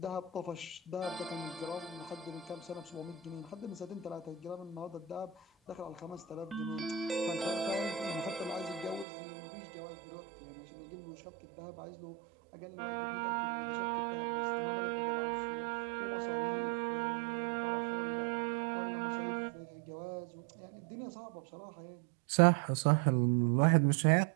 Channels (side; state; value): left; drops out; at 9.1 s